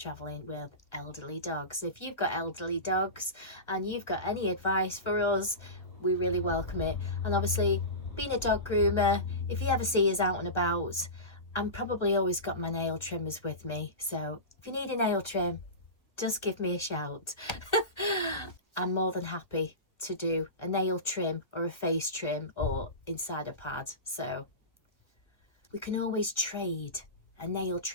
with elderly dogs. If you've got elderly dogs and you've got any advice for us, we really welcome it. And obviously, being a dog groomer, if you ever see us out and about, I'm probably always got my nail trimmers with me, so if you need a nail trim, just give me a shout. I'm more than happy to do a nail trim or a face trim or inside a pad. So we can always trade a nail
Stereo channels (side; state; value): right; late; 1.5 ms